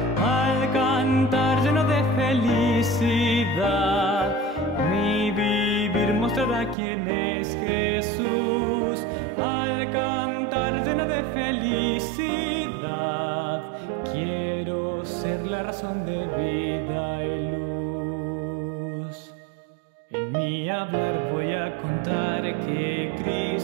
Al cantar lleno de felicidad, mi vivir mostrará quién es Jesús. Al cantar lleno de felicidad, quiero ser la razón de vida y luz. En mi hablar voy a contar que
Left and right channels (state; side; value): drops out; left; at 6.8 s